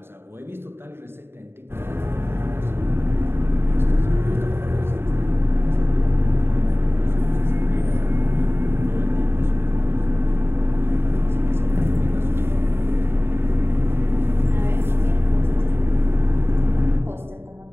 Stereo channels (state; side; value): late; left; 0.11 ms